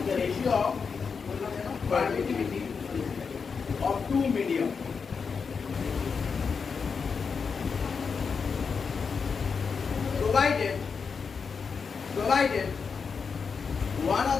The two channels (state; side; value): quieter; right; 5.6 dB